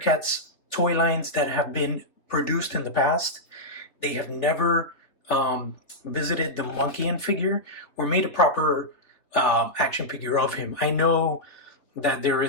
toy lines that have been produced in the past. They have never visited the Monkian figure or made a proper action figure of him. I know that there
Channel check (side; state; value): right; late; 3.0 ms